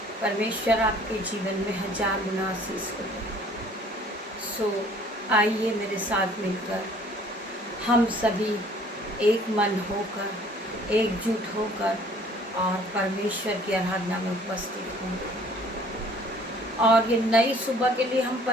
परमेश्वर आपके जीवन में हजार गुना आशीष को दे। सो आइए मेरे साथ मिलकर हम सभी एक मन होकर एकजुट होकर और परमेश्वर की आराधना में उपस्थित होंगे और ये नई सुबह के लिए हम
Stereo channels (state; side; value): normal; both; correlation 0.55